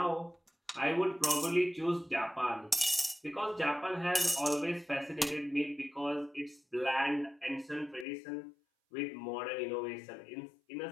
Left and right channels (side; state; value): right; drops out; at 8.1 s